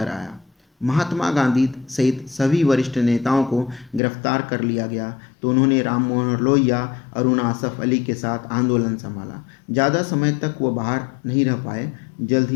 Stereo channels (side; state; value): right; drops out; at 4.0 s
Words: आया। महात्मा गांधी सहित सभी वरिष्ठ नेताओं को गिरफ्तार कर लिया गया तो उन्होंने राम मनोहर लोहिया, अरुण आसफ अली के साथ आंदोलन संभाला। ज़्यादा समय तक वो बाहर नहीं रह पाए। जल्द